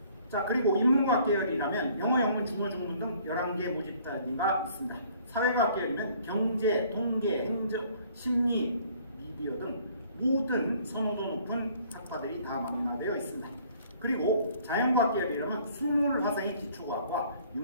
자, 그리고 인문과학 계열이라면 영어, 영문, 중어, 중문 등 11개 모집 단위가 있습니다. 사회과학 계열이면 경제, 통계, 행정, 심리, 미디어 등 모든 선호도 높은 학과들이 다 망라되어 있습니다. 그리고 자연과학 계열이라면 수물, 화생의 기초과학과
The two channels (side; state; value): both; inverted; correlation -0.58